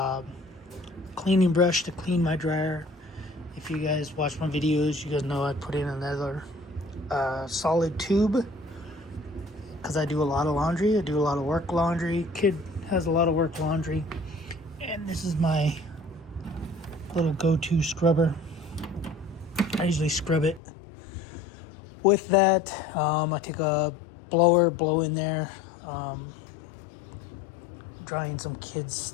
cleaning brush to clean my dryer. If you guys watch my videos, you guys know I put in another solid tube because I do a lot of laundry. I do a lot of work laundry. Kid has a lot of work laundry. And this is my little go-to scrubber. I usually scrub it with that. I take a blower, blow in there. Drying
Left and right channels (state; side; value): drops out; right; at 20.6 s